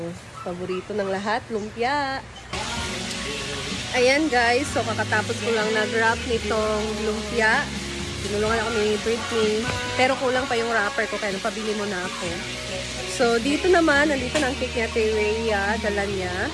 paborito ng lahat, lumpia. Ayan guys, so kakatapos ko lang nag-wrap nitong lumpia. Tinulungan ako ni Britney, pero kulang pa yung wrapper ko, kaya pabili mo na ako. So dito naman, nandito na ang cake niya, Ate Rhea, dala niya.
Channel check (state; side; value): identical; both; correlation 1.00